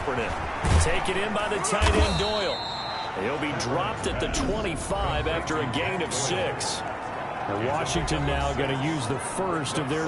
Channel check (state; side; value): identical; both; correlation 1.00